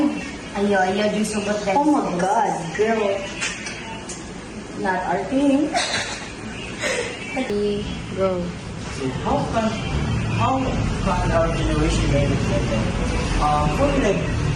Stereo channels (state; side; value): identical; both; correlation 1.00